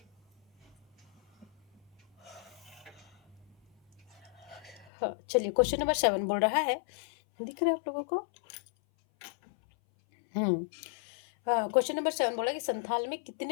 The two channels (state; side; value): drops out; right; at 4.9 s